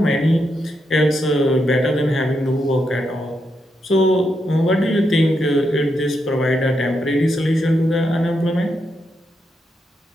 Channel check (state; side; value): normal; both; correlation 0.82